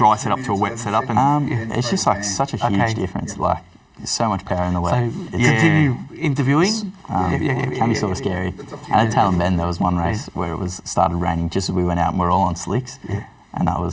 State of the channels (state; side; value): identical; both; correlation 1.00